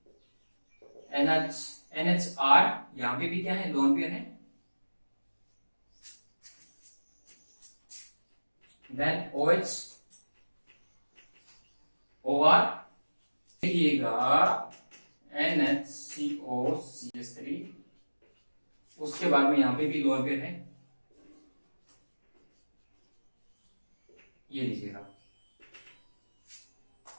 NHR, यहां पे भी क्या है, लोन पेयर है, देन OH, OR, देखिएगा NHCO CH3, उसके बाद में यहां पे भी लोन पेयर है, ये लीजिएगा।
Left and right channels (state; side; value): inverted; both; correlation -1.00